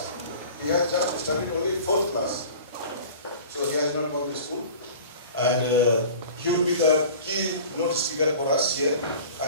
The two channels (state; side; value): inverted; both; correlation -0.42